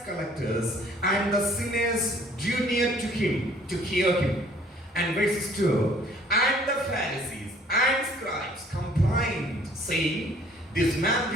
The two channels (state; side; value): normal; both; correlation 0.57